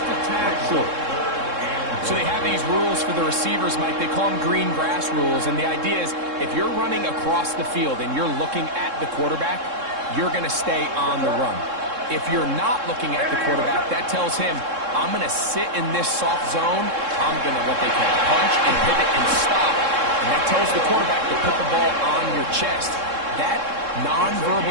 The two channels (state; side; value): late; left; 3.7 ms